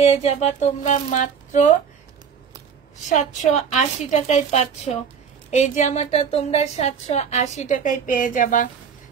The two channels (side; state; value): left; quieter; 6.8 dB